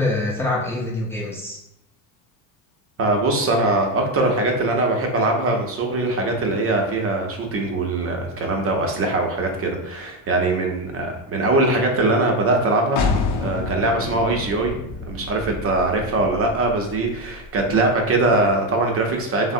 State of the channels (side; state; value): both; normal; correlation 0.11